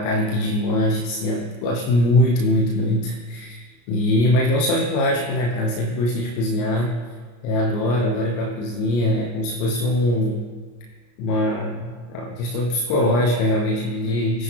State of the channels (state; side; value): late; right; 34 ms